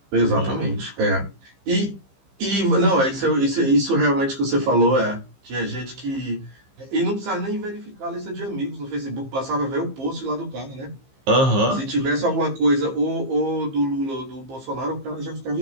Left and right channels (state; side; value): late; left; 15 ms